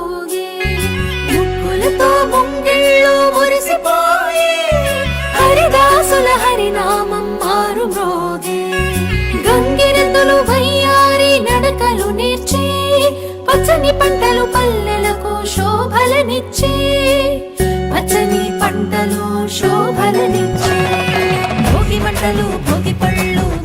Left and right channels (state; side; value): identical; both; correlation 1.00